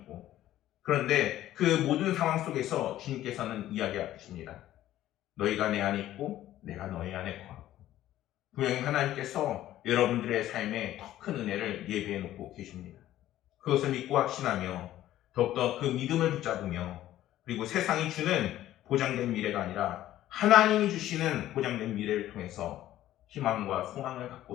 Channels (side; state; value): right; quieter; 13.5 dB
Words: 그런데 그 모든 상황 속에서 주님께서는 이야기하십니다. 너희가 내 안에 있고 내가 너희 안에 거하고. 분명히 하나님께서 여러분들의 삶에 더 큰 은혜를 예비해 놓고 계십니다. 그것을 믿고 확신하며 더욱더 그 믿음을 붙잡으며, 그리고 세상이 주는 보장된 미래가 아니라 하나님이 주시는 보장된 미래를 통해서 희망과 소망을 갖고